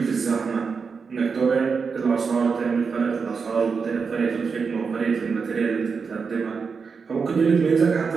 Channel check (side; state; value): left; quieter; 5.4 dB